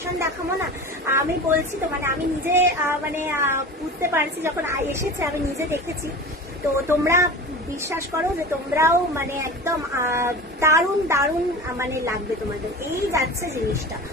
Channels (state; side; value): normal; both; correlation 0.33